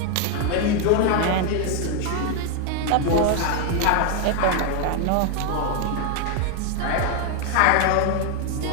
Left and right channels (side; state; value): both; different; correlation 0.01